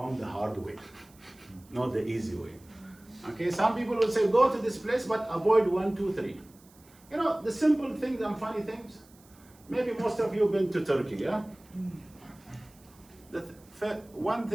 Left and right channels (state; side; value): noise; right; hiss, 27 dB below the sound